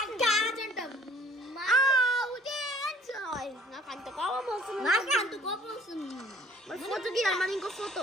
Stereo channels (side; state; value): both; normal; correlation 0.55